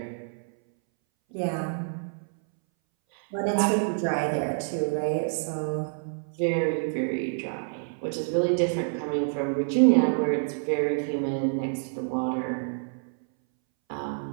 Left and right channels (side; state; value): left; silent; 60 dB below the other